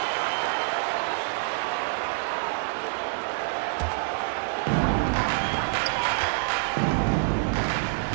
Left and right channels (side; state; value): left; silent; 60 dB below the other